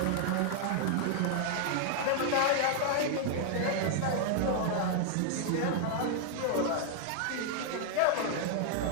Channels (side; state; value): both; different; correlation 0.00